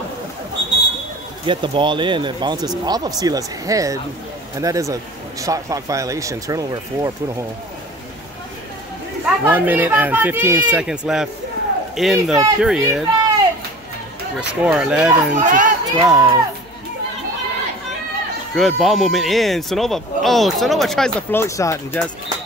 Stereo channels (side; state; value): left; noise; hum, 28 dB below the sound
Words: get the ball in. It bounces off of Sila's head. And that is a shot clock violation. Turnover for Punahou. 1 minute and 15 seconds left in the period. Your score 11 to 12. Good ball movement in. Sonova. Oh, Sonova tries the float shot and just